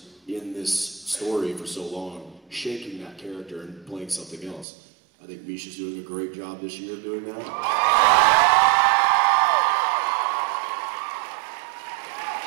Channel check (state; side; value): drops out; left; at 4.7 s